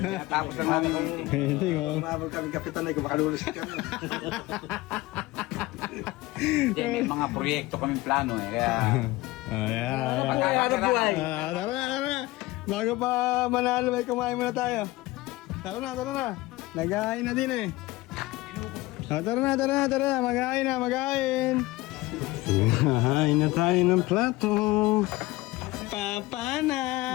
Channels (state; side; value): quieter; right; 19.8 dB